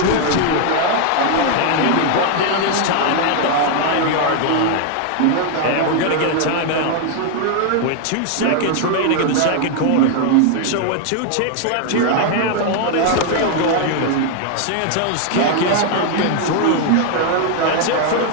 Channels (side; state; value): both; different; correlation 0.00